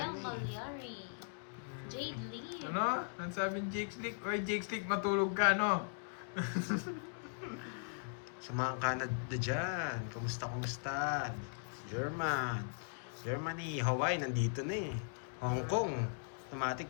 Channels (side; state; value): right; silent; digital silence